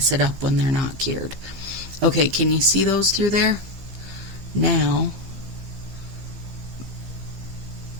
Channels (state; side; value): late; left; 15 ms